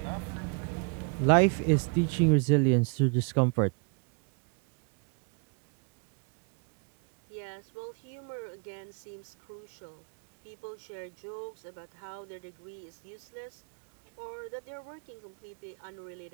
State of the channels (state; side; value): quieter; left; 37.8 dB